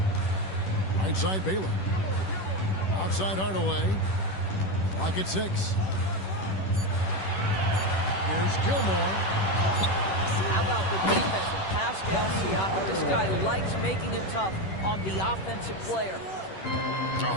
Right side Baylor. Outside Hardaway. Clock at 6. Here's Gilmore. How about the defense of Pascal Siakam? This guy likes making it tough on the offensive player.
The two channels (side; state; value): right; late; 10 ms